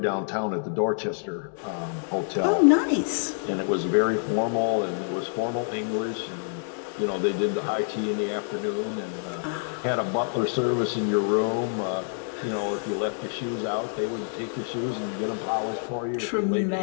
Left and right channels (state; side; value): silent; right; digital silence